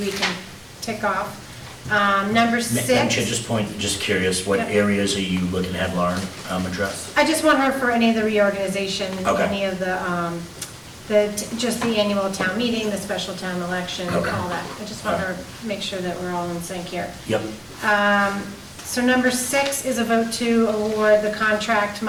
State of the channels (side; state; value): both; identical; correlation 1.00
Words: we can tick off. Number 6. Madam Chair, just curious, what Yep. areas are you looking to have Lauren address? I just want her for any of the reorganization, Okay. any of just the annual town meeting, the special town election, Okay. all that. I just want her to make sure that we're all in sync here. Yep. So number 6 is a vote to award the contract,